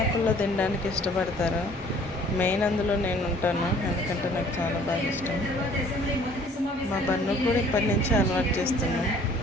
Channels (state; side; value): normal; both; correlation 0.55